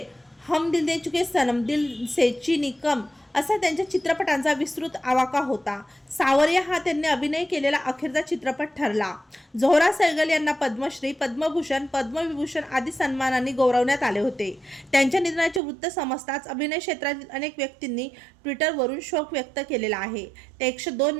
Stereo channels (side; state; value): left; drops out; at 15.6 s